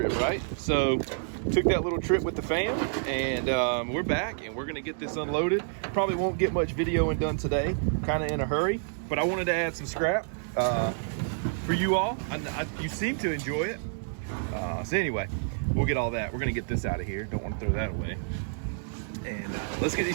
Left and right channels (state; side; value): silent; left; digital silence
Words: right? So took that little trip with the fam, and we're back, and we're gonna get this unloaded. Probably won't get much videoing done today. Kind of in a hurry, but I wanted to add some scrap for you all. You seem to enjoy it. So anyway, we'll get all that. We're gonna get this out of here. Don't want to throw that away. And let's get these